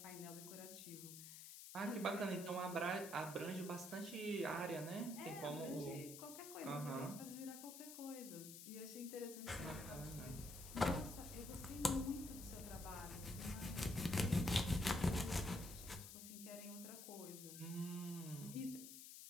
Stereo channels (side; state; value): left; noise; hiss, 11 dB below the sound